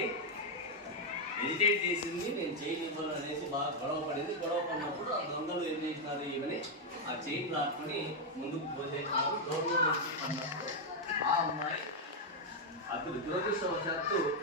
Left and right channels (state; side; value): normal; both; correlation 0.01